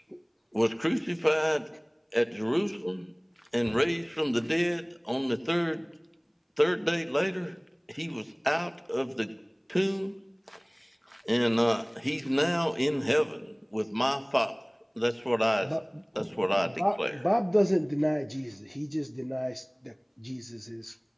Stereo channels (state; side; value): identical; both; correlation 1.00